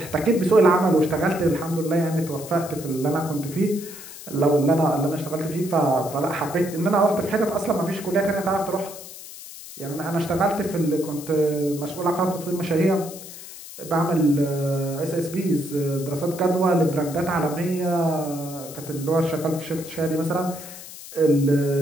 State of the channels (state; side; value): noise; left; hiss, 14 dB below the sound